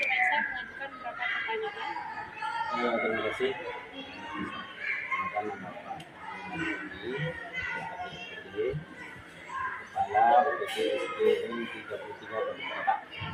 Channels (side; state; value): both; identical; correlation 1.00